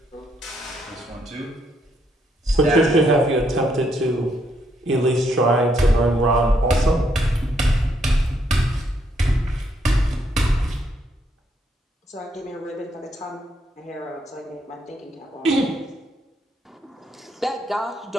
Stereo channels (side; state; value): both; normal; correlation 0.74